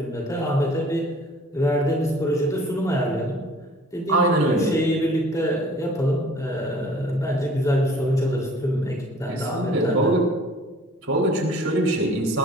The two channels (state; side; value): normal; both; correlation 0.52